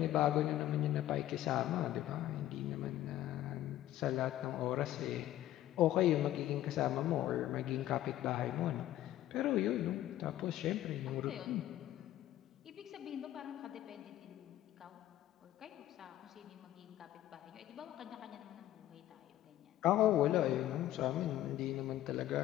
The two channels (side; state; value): right; quieter; 13.6 dB